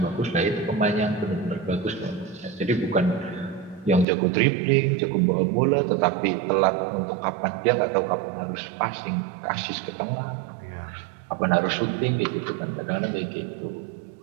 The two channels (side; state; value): left; drops out; at 4.0 s